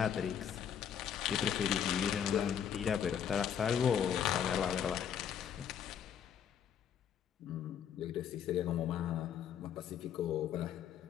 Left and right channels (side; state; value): right; quieter; 8.6 dB